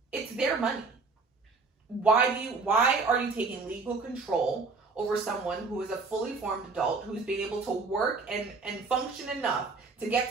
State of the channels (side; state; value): left; quieter; 4.2 dB